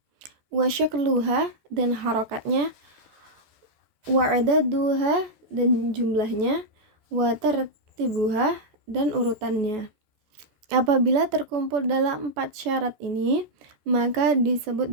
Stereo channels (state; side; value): late; left; 14 ms